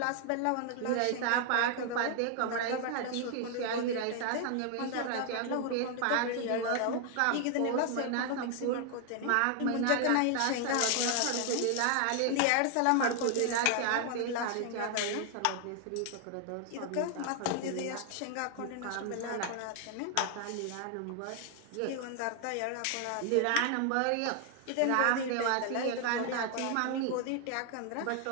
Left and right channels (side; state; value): both; different; correlation 0.00